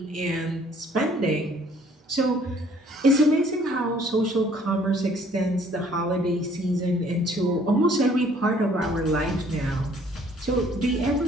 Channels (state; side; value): normal; both; correlation 0.59